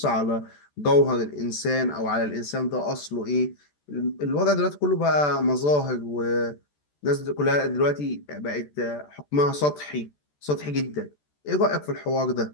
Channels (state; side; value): late; right; 14 ms